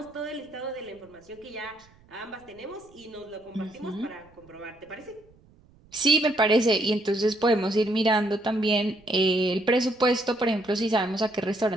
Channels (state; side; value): noise; right; rumble, 28 dB below the sound